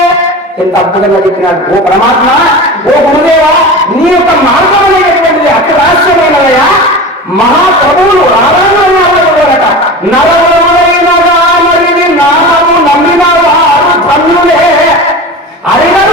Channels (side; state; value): both; normal; correlation 0.31